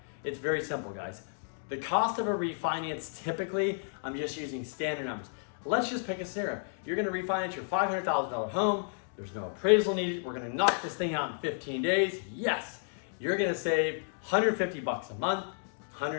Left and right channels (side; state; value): right; silent; digital silence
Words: It's very simple, guys. The cost of a refinance, typically, I'm just using standard numbers. Let's just pick a scenario. You're gonna refinance your $500,000 home. There's no appraisal needed. We're gonna knock this thing out in 15 days. Yes, you're gonna save $150 a month.